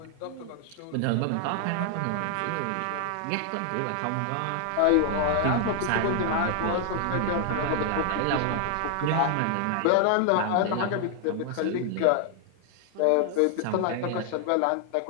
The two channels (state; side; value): different; both; correlation 0.00